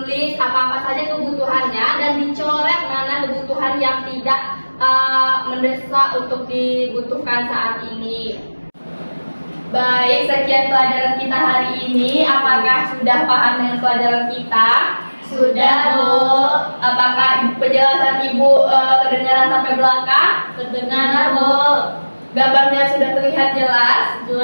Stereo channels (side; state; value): both; inverted; correlation -1.00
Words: apa-apa saja kebutuhannya dan dicoret mana kebutuhan yang tidak mendesak untuk dibutuhkan saat ini. Baik, sekian pelajaran kita hari ini. Apakah sudah paham dengan pelajaran kita? Sudah, Bu. Apakah penjelasan Ibu kedengaran sampai belakang? Terdengar, Bu. Gambarnya sudah terlihat jelas?